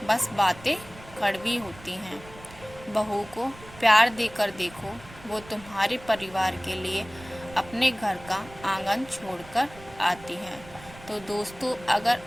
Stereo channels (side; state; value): right; noise; rumble, 19 dB below the sound